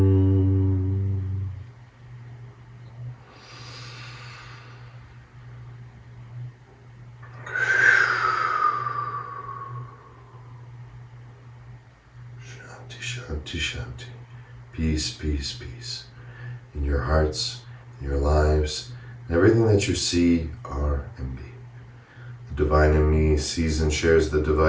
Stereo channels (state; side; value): identical; both; correlation 1.00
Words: Shanti, Shanti. Peace, peace, peace. In your hearts, in your lives, and everything that you see, are, and be. The divine in me sees and shares the